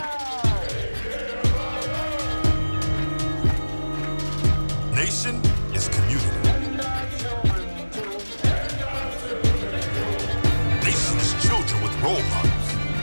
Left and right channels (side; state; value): both; inverted; correlation -1.00